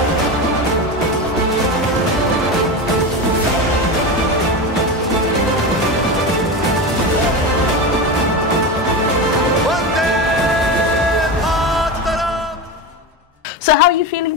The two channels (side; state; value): both; normal; correlation 0.21